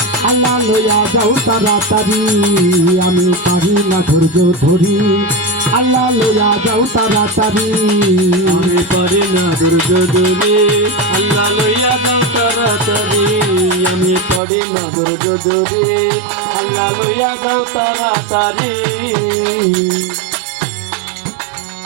আল্লাহ লইয়া যাও তাড়াতাড়ি আমি পারি না ধৈর্য ধরি আল্লাহ লইয়া যাও তাড়াতাড়ি আমি পারি না ধৈর্য ধরি আল্লাহ লইয়া যাও তাড়াতাড়ি আমি পারি না ধৈর্য ধরি আল্লাহ লইয়া যাও তাড়াতাড়ি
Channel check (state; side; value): drops out; left; at 14.4 s